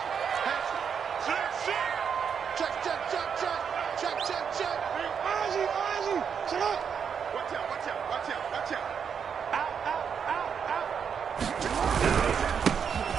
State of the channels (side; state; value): left; quieter; 7.1 dB